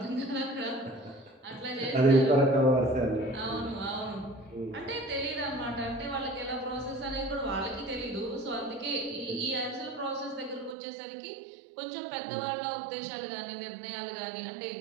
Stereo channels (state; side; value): drops out; left; at 10.8 s